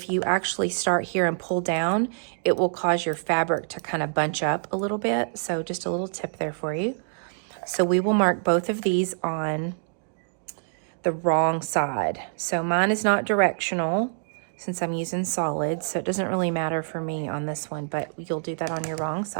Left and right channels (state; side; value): silent; left; 61 dB below the other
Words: you actually start here and pull down, it will cause your fabric to kind of bunch up a little bit. So just a little tip there for you. So we will mark both of these on the wrong side. So mine is not directional since I'm using solids, so it doesn't really matter for me on this one, but you'll do that on your wrong